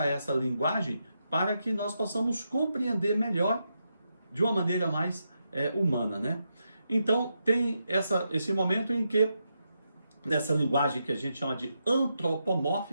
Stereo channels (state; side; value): inverted; both; correlation -0.84